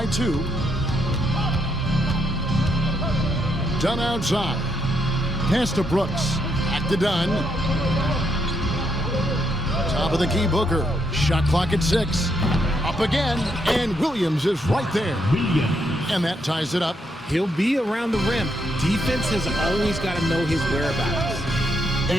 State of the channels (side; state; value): both; normal; correlation 0.77